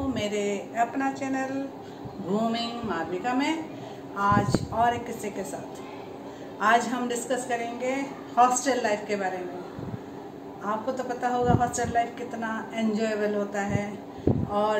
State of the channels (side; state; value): both; identical; correlation 1.00